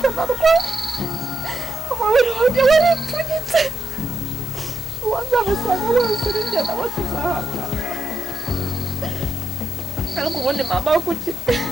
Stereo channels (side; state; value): both; normal; correlation 0.83